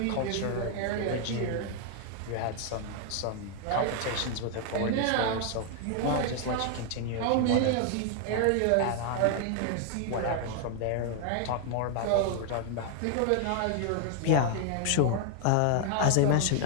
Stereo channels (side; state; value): both; different; correlation 0.00